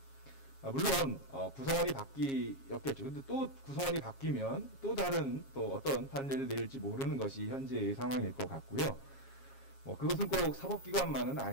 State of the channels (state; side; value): late; right; 7.4 ms